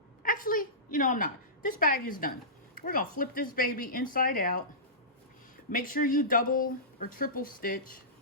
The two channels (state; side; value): normal; both; correlation -0.20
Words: actually, you know, I'm not. This bag is done. We're gonna flip this baby inside out. Make sure you double or triple stitch.